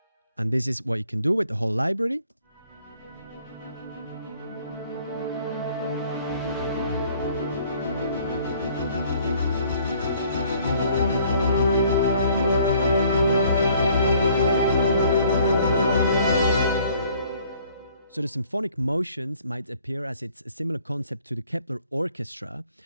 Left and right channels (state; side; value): inverted; both; correlation -0.59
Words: And this is what you can do with the whole library. So the symphonic motions might appear as it's a similar concept to the Kepler Orchestra.